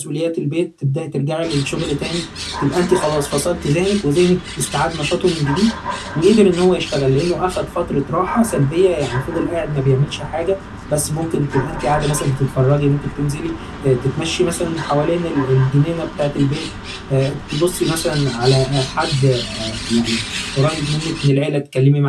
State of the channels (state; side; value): identical; both; correlation 1.00